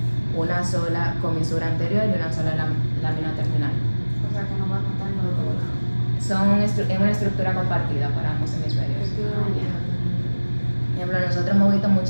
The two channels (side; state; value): both; inverted; correlation -1.00